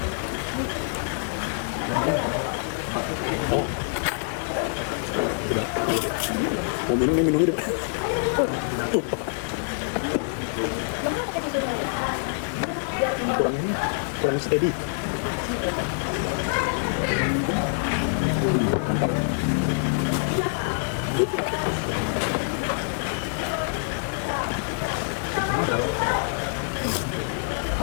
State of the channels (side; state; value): right; silent; digital silence